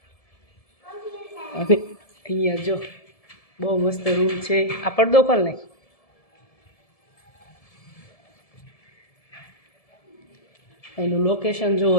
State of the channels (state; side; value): late; right; 1.7 ms